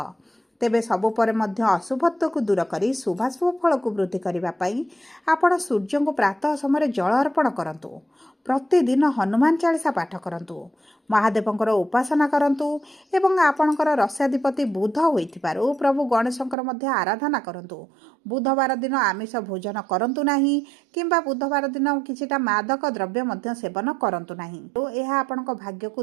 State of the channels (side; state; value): left; drops out; at 16.6 s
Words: ତେବେ ସବୁ ପରେ ମଧ୍ୟ ଅଶୁଭତ୍ୱକୁ ଦୂର କରି ଶୁଭାଶୁଭ ଫଳକୁ ବୃଦ୍ଧି କରିବା ପାଇଁ ଆପଣ ସୂର୍ଯ୍ୟଙ୍କୁ ପ୍ରାତଃ ସମୟରେ ଜଳ ଅର୍ପଣ କରନ୍ତୁ। ପ୍ରତିଦିନ ହନୁମାନ ଚାଳିଶା ପାଠ କରନ୍ତୁ, ମହାଦେବଙ୍କର ଉପାସନା କରନ୍ତୁ ଏବଂ ଆପଣଙ୍କର ରାଶ୍ୟାଧିପତି ବୁଧ ହୋଇଥିବାରୁ ପ୍ରଭୁ ଗଣେଶଙ୍କର ମଧ୍ୟ ଆରାଧନା କରନ୍ତୁ। ବୁଧବାର ଦିନ ଆମିଷ ଭୋଜନ କରନ୍ତୁ ନାହିଁ କିମ୍ବା ବୁଧବାର ଦିନ କିଛିଟା ମାଦକ ଦ୍ରବ୍ୟ ମଧ୍ୟ ସେବନ କରନ୍ତୁ ନାହିଁ। ଏହା ଆପଣଙ୍କ ଭାଗ୍ୟକୁ